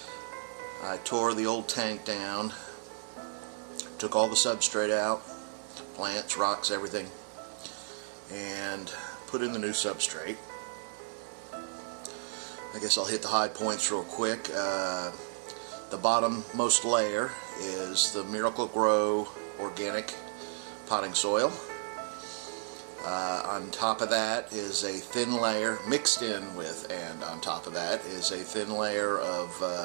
I tore the old tank down, took all the substrate out, plants, rocks, everything, and put in the new substrate. I guess I'll hit the high points real quick. The bottommost layer is the Miracle-Gro organic potting soil. On top of that is a thin layer, mixed in with, and on top of that is a thin layer of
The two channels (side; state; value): left; silent; digital silence